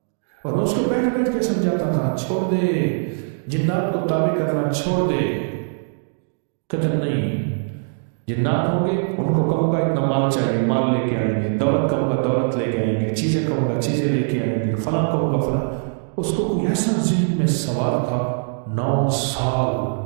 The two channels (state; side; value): silent; left; digital silence